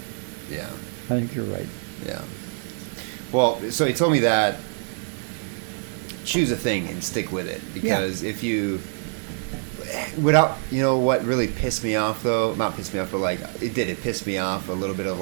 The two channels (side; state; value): left; silent; 60 dB below the other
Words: yeah, I think you're right. yeah. Well, so he told me that choose a thing and stick with it because if you without, you know what really pissed me off though, not pissed me off, but like it pissed me off a little bit of